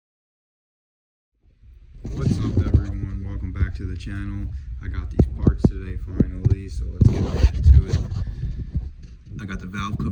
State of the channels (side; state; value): both; identical; correlation 1.00